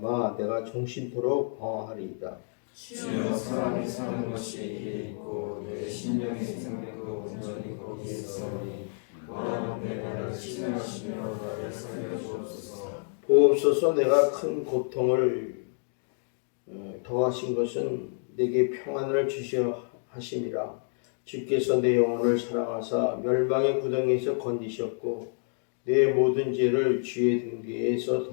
내가 종신토록 방황하리이다. 주여, 사람이 사는 것이 이에 있고 내 심령의 생명도 온전히 거기에 있사오니 원하건대 나를 치료하시며 나를 살려주옵소서. 보옵소서. 내가 큰 고통을 더하신 것은 내게 평안을 주시어 하심이라. 주께서 내 영혼을 사랑하사 멸망의 구덩이에서 건지셨고 내 모든 죄를 주의 등 뒤에서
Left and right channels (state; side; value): silent; right; 59 dB below the other